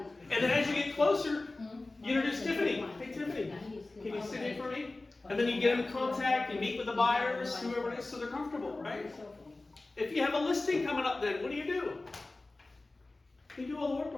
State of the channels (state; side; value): quieter; right; 3.1 dB